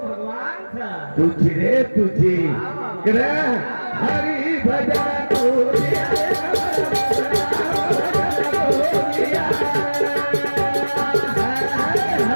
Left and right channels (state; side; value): inverted; both; correlation -1.00